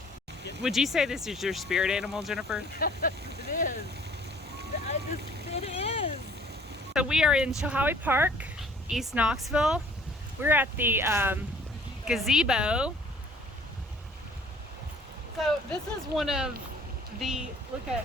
Would you say this is your spirit animal, Jennifer? It is. It is. So we are in Chilhowee Park, East Knoxville. We're at the gazebo. So this is one of the, look at,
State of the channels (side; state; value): both; normal; correlation 0.54